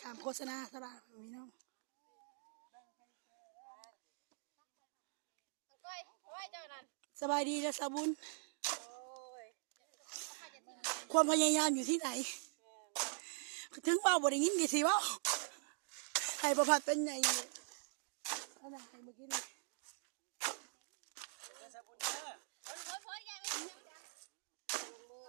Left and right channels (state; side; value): silent; left; digital silence